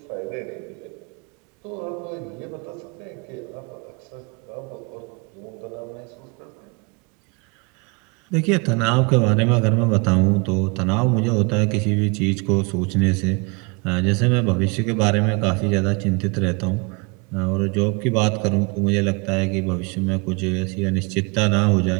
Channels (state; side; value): quieter; left; 30.4 dB